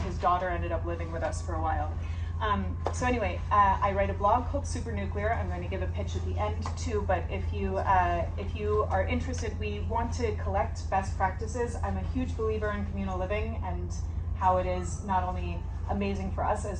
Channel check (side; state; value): both; identical; correlation 1.00